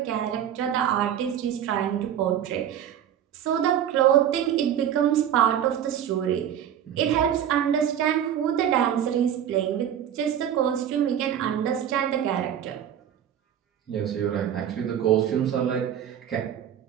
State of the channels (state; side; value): quieter; left; 9.8 dB